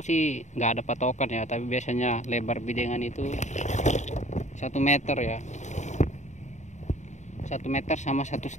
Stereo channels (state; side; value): late; right; 0.34 ms